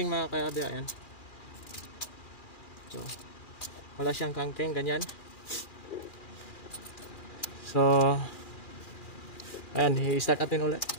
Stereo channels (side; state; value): right; late; 2.4 ms